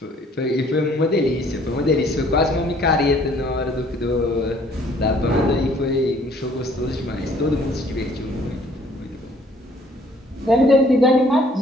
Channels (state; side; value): normal; both; correlation 0.59